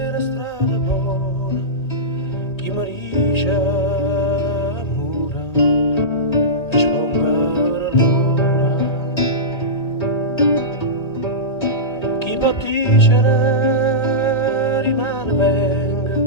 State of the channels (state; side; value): late; right; 2.0 ms